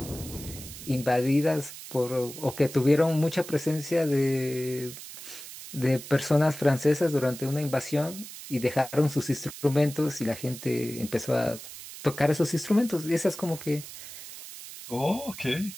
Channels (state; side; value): noise; right; hiss, 13 dB below the sound